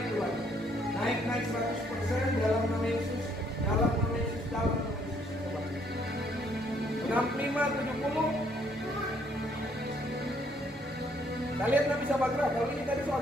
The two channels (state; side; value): normal; both; correlation 0.67